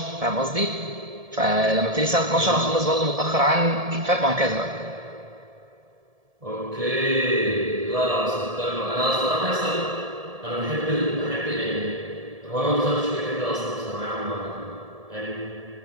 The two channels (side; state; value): left; late; 1.7 ms